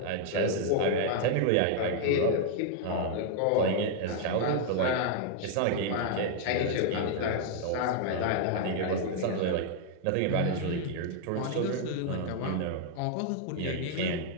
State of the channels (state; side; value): different; both; correlation 0.00